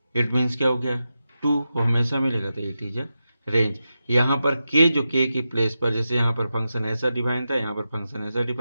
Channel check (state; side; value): inverted; both; correlation -0.91